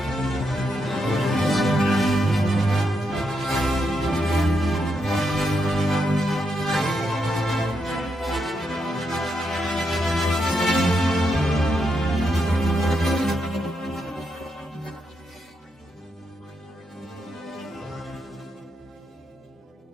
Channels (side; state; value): both; normal; correlation 0.82